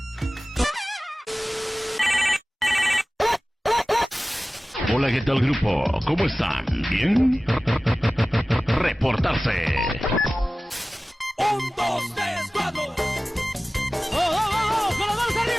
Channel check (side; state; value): both; normal; correlation 0.97